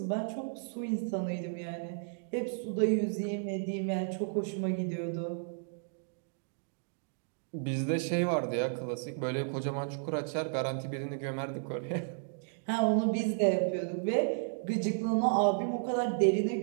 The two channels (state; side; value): silent; left; digital silence